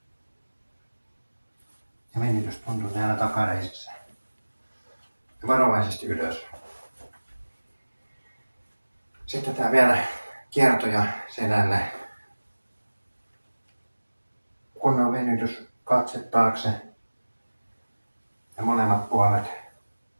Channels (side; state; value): both; inverted; correlation -1.00